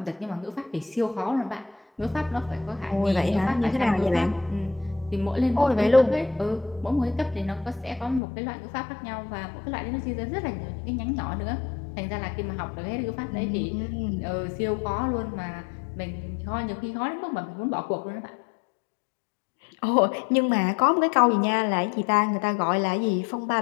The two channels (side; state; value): right; drops out; at 8.2 s